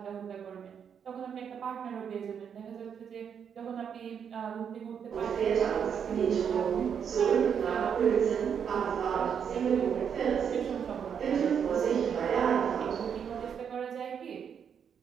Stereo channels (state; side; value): quieter; left; 7.6 dB